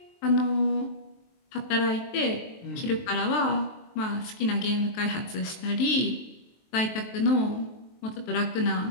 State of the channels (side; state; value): right; late; 23 ms